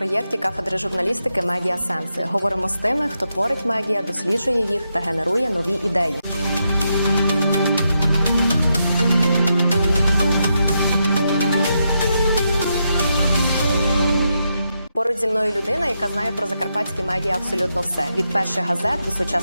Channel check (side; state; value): both; inverted; correlation -0.83